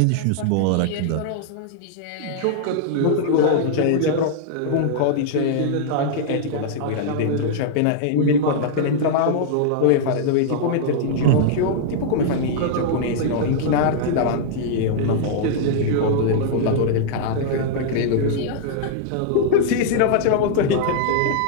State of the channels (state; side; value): different; both; correlation -0.01